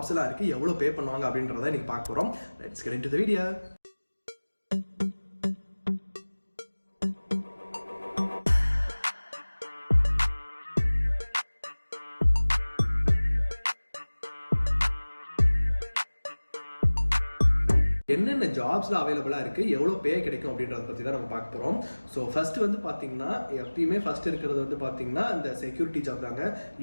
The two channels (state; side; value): inverted; both; correlation -1.00